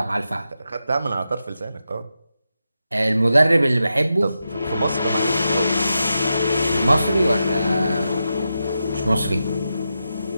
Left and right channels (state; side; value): inverted; both; correlation -0.88